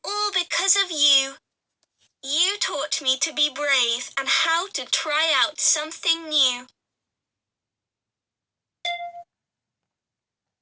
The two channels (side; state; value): both; identical; correlation 1.00